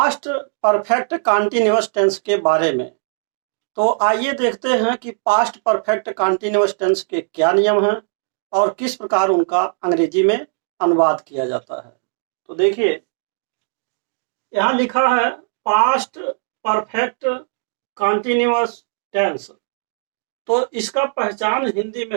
परफेक्ट कॉन्टिन्यूअस टेंस के बारे में। तो आइए देखते हैं कि पास्ट परफेक्ट कॉन्टिन्यूअस टेंस के क्या नियम हैं और किस प्रकार उनका अंग्रेजी में अनुवाद किया जाता है। तो देखिए, यहाँ लिखा है पास्ट परफेक्ट कॉन्टिन्यूअस टेंस। तो इसका पहचान हिंदी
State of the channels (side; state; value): left; silent; digital silence